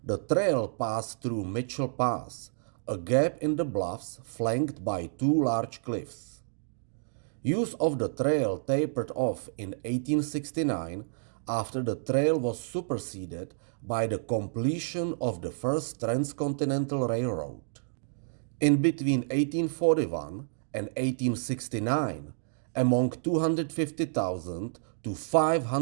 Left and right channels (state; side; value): silent; left; digital silence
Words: The trail passed through Mitchell Pass, a gap in the bluffs flanked by 2 large cliffs. Use of the trail tapered off in 1869 after the trail was superseded by the completion of the first transcontinental railroad. In between 1841 and 1869, among 250,000 to